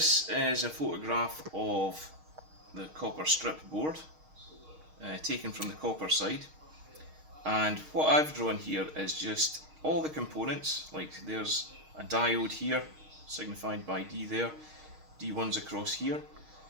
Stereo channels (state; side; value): late; left; 6.4 ms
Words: is a photograph of the copper strip board taken from the copper side, and what I've drawn here is just all the components. Like there's a diode here signified by D there, D1's across here.